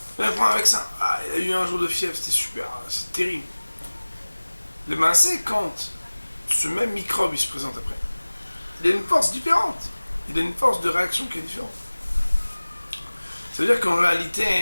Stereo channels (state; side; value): inverted; both; correlation -1.00